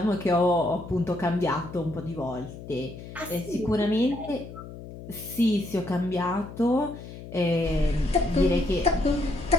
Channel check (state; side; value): noise; left; hum, 13 dB below the sound